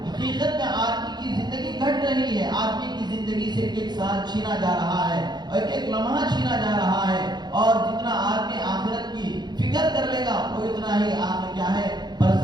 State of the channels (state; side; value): late; left; 0.21 ms